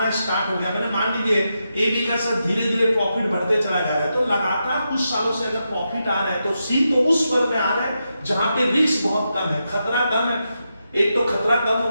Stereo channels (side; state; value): both; inverted; correlation -0.86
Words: स्टार्ट हो गया। मैंने मान लीजिए ए बी का सर धीरे धीरे प्रॉफिट बढ़ते चला जा रहा है, तो लगातार कुछ सालों से अगर प्रॉफिट आ रहा है तो सी तो उस फर्म में आ रहा है जहां पे रिस्क बहुत कम है, खतरा कम है। एक तो खतरा कम हो